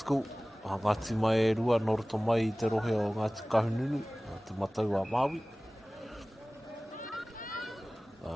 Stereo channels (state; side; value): normal; both; correlation 0.98